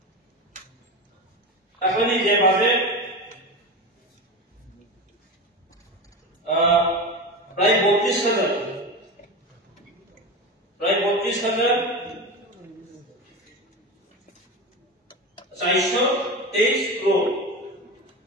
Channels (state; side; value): normal; both; correlation 0.24